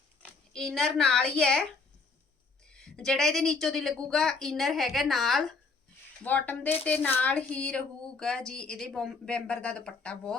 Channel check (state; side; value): quieter; right; 4.4 dB